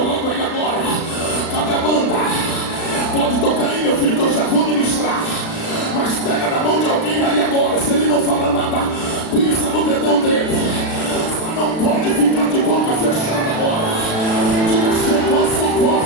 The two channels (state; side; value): late; right; 36 ms